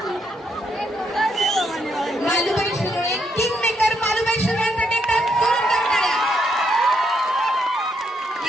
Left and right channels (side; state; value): both; normal; correlation 0.76